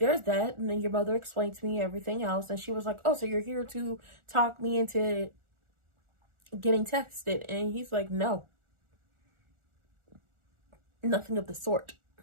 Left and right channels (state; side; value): late; left; 1.4 ms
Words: that. And then your mother explained to me everything else. And she was like, oh, so you're here to talk me into getting texted? And he's like, no, nothing of the sort.